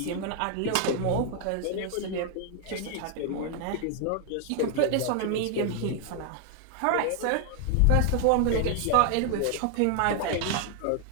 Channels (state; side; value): different; both; correlation 0.00